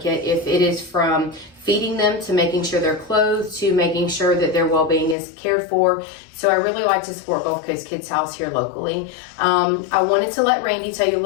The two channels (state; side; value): drops out; right; at 5.2 s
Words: If it is from feeding them to making sure they're clothed to making sure that their well-being is cared for. So I really like to support Gulf Coast Kids House here locally. I wanted to let Randi tell you a